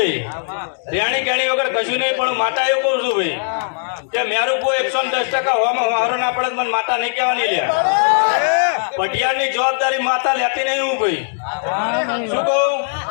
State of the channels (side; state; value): right; silent; digital silence